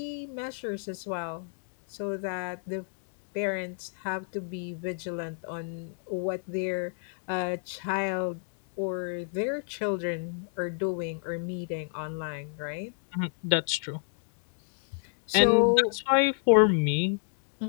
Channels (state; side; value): silent; right; digital silence